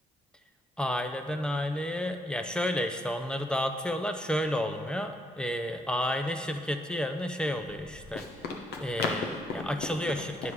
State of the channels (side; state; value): both; normal; correlation 0.74